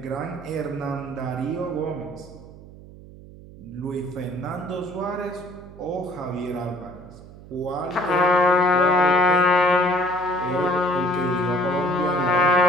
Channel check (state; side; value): noise; right; hum, 18 dB below the sound